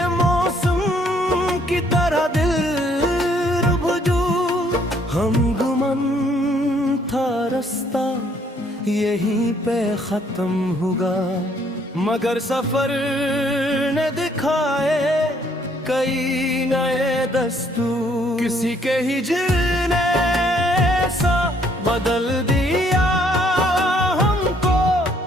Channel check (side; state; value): both; normal; correlation 0.66